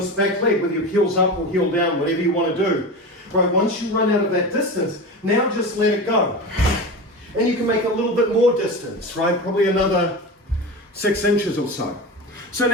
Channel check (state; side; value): normal; both; correlation 0.27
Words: back leg with your heels up or heel down, whatever you want to do, right? Once you run out of that distance, now just let it go. And you can make a little bit more distance, right? Probably another 6 inches or so. So